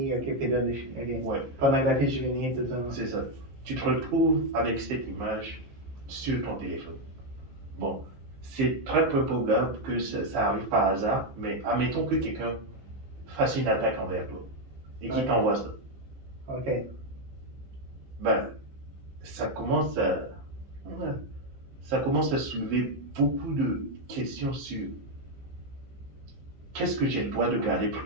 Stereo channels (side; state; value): left; late; 15 ms